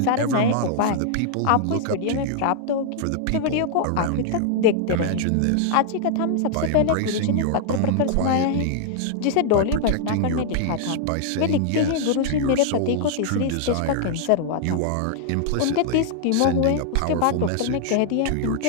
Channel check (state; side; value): different; both; correlation -0.01